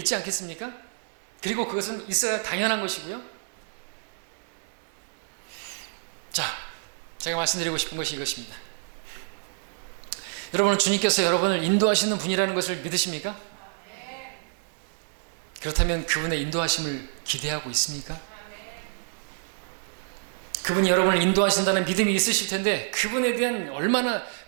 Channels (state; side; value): silent; left; digital silence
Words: 않겠습니까? 그리고 그것은 있어야 당연한 것이고요. 자, 제가 말씀드리고 싶은 것이 이것입니다. 여러분은 주님께서 여러분을 인도하시는 분이라는 것을 믿으십니까? 그렇다면 그분의 인도하심을 기대하고 있습니까? 그분이 여러분을 인도하신다는 믿음이 있으실 텐데 그분에 대한 얼마나